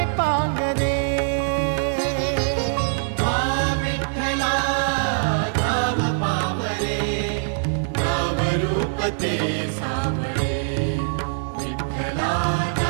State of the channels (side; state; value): left; silent; digital silence